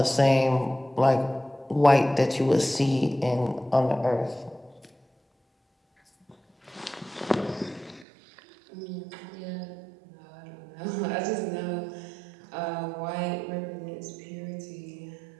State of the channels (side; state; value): left; drops out; at 8.1 s